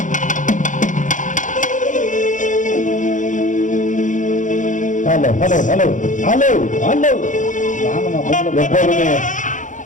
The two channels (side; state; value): right; late; 0.37 ms